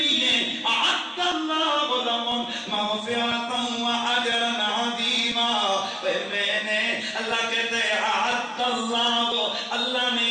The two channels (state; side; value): identical; both; correlation 1.00